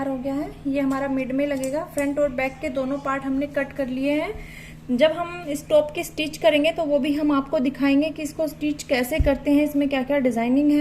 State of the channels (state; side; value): identical; both; correlation 1.00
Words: हो गया है। ये हमारा मिड में लगेगा। फ्रंट और बैक के दोनों पार्ट हमने कट कर लिए हैं। जब हम इस टॉप की स्टिच करेंगे तो वो भी हम आपको दिखाएंगे कि इसको स्टिच कैसे करते हैं, इसमें क्या क्या डिजाइनिंग